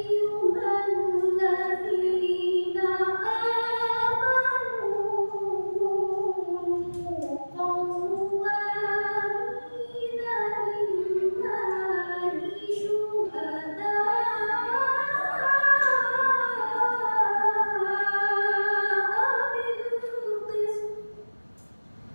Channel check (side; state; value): both; inverted; correlation -1.00